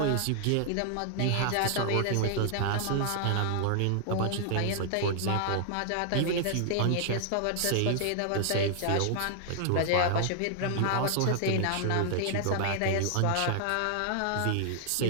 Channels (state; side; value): different; both; correlation 0.00